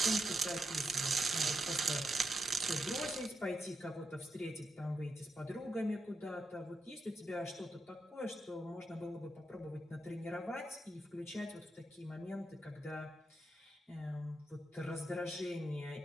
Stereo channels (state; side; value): normal; both; correlation 0.85